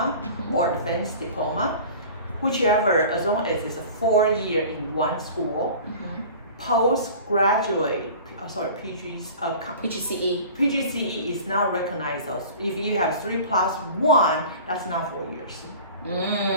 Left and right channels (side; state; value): both; inverted; correlation -0.41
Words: or advanced diploma, whichever, as long as it's a 4-year in one school, postgraduate, PGCE is not recognized. If you have 3+1, that's not 4 years.